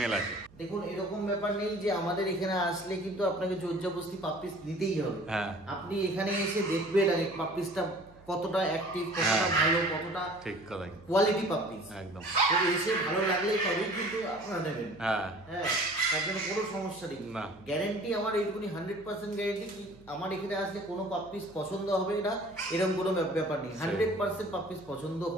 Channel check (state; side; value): noise; right; hum, 24 dB below the sound